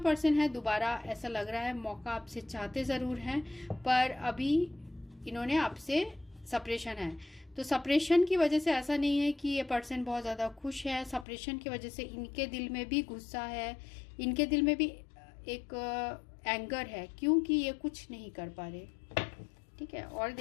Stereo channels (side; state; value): right; drops out; at 11.2 s